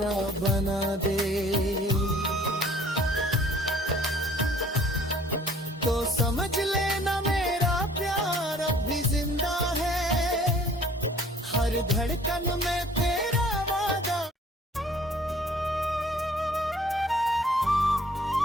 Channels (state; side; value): normal; both; correlation 0.55